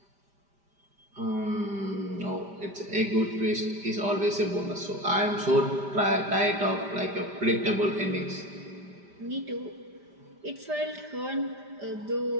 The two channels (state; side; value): late; left; 5.1 ms